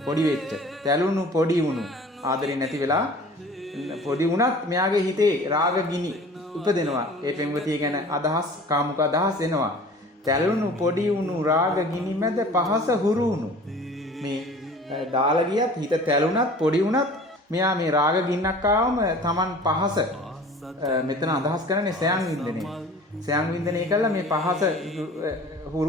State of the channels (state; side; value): normal; both; correlation 0.45